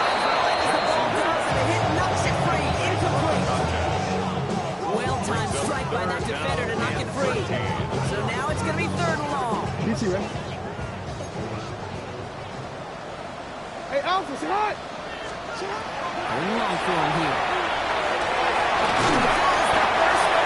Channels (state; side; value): identical; both; correlation 1.00